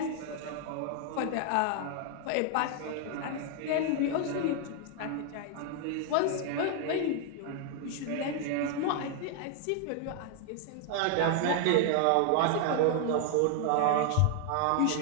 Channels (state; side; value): different; both; correlation 0.00